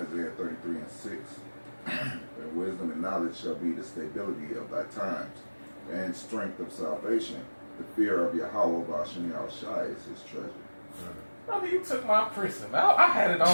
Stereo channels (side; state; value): both; inverted; correlation -1.00